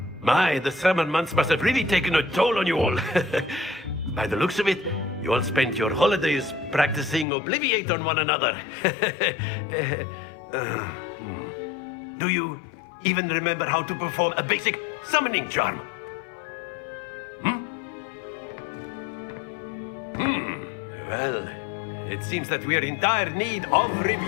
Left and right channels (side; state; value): right; drops out; at 7.2 s